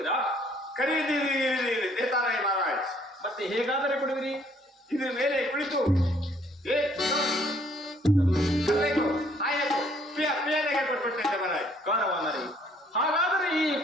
ಖರೀದಿ ದೇತಾರಾಯ ಮಹಾರಾಜ್. ಮತ್ತೆ ಹೇಗಾದರೆ ಕೊಡುವಿರಿ? ಇದ್ರ ಮೇಲೆ ಕುಳಿತು ಕೊಟ್ಬಿಟ್ಟೆ ಮಹಾರಾಜ್. ಕಾರವಾದರೆ ಹಾಗಾದರೆ ಈ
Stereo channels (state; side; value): normal; both; correlation 0.63